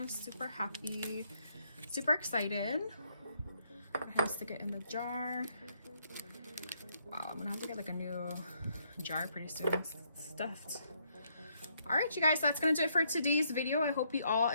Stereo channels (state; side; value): inverted; both; correlation -0.73